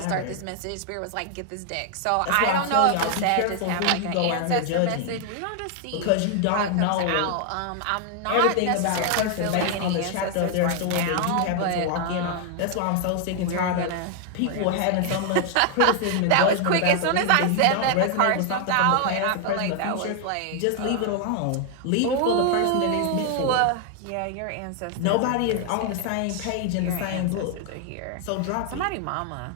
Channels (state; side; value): different; both; correlation 0.00